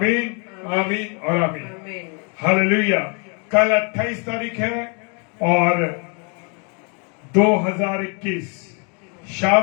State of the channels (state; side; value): quieter; right; 35.7 dB